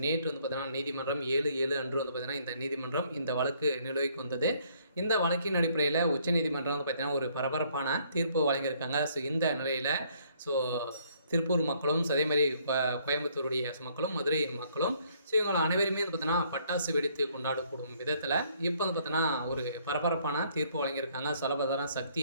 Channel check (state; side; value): inverted; both; correlation -0.65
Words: நேற்று வந்து பார்த்தீங்கன்னா நீதிமன்றம் 7/7 அன்று வந்து பார்த்தீங்கன்னா இந்த நீதிமன்றம் இந்த வழக்கு நிலுவைக்கு வந்தது. இந்த வழக்கின் அடிப்படையில் உச்சநீதிமன்றம் வந்து பார்த்தீங்கன்னா ஒரு பரபரப்பான தீர்ப்பு வழங்கியிருக்காங்க. இந்த நிலையில் ஸோ திருப்பூர் மக்களும் அதே மாதிரி கோயம்புத்தூருடைய மக்களும் மதுரை மக்களும் இவங்களை அனைவருமே வந்து பார்த்தோன்னா பட்டாசு வெடித்து கொண்டாடக்கூடும் விதத்தில் இப்போ வந்து பார்த்தோன்னா ஒரு பரபரப்பான தீர்ப்பு வழங்கியிருக்காங்க. சொல்லப்போனால்